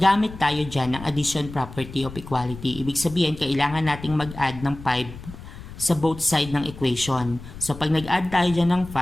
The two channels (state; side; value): noise; left; rumble, 14 dB below the sound